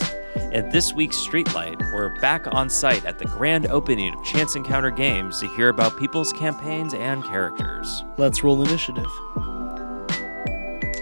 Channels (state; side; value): inverted; both; correlation -1.00